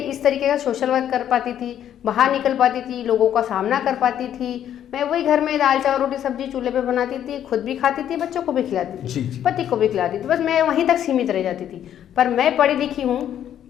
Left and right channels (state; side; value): quieter; right; 10.3 dB